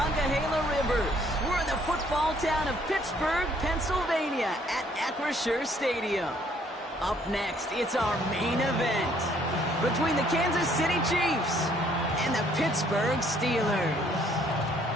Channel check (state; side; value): normal; both; correlation 0.64